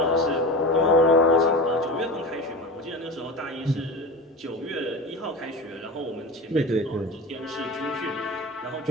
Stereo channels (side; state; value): both; normal; correlation 0.30